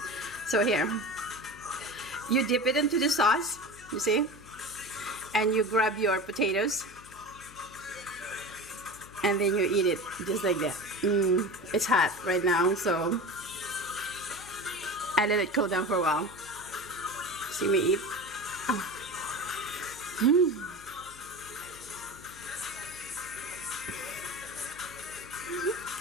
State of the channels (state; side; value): noise; left; hum, 21 dB below the sound